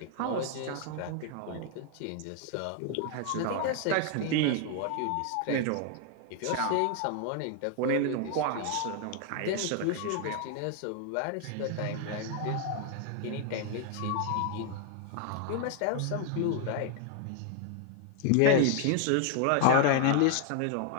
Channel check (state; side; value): different; both; correlation 0.00